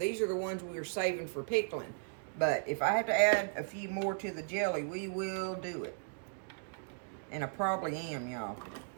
are the ones we were saving for pickling. But if I have to add a few more to the jelly, we will do it. And I probably am, y'all.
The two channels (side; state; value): left; silent; digital silence